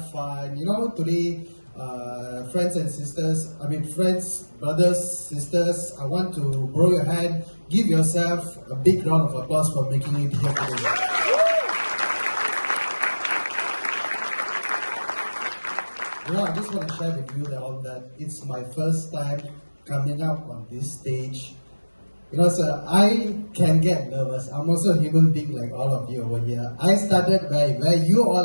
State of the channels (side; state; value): both; inverted; correlation -1.00